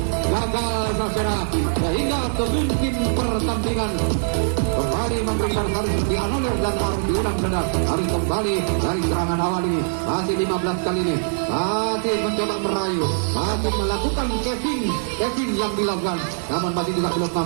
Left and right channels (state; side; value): silent; left; 64 dB below the other